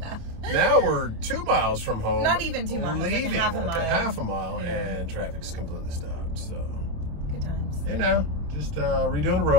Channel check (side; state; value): left; late; 27 ms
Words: Now we're 2 miles from home. Not even 2 miles, like leaving, a half a mile. And traffic's completely stopped. So, Good times. hey now, just redoing the